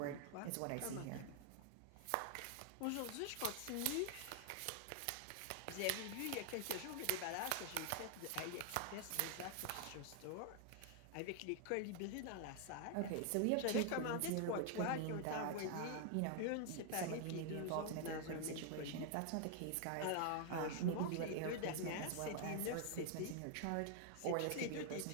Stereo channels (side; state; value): both; different; correlation 0.00